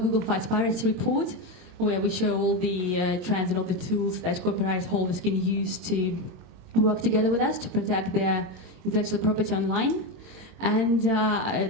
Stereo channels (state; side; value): late; left; 22 ms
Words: Fights Piracy report, where we show all the trends and all the tools that copyright holders can use to work together with us to protect their intellectual property online. And